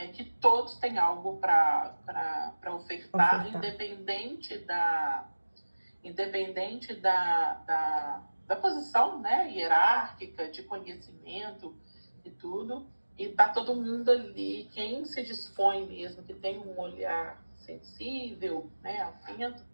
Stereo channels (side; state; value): both; inverted; correlation -1.00